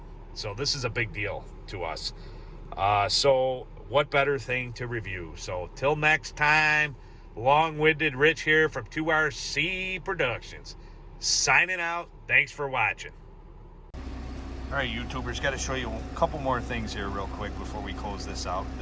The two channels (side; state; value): both; identical; correlation 1.00